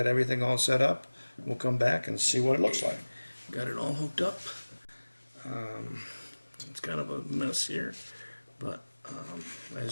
everything all set up, we'll come back and see what it looks like. Got it all hooked up. It's kind of a mess here, but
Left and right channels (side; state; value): both; inverted; correlation -1.00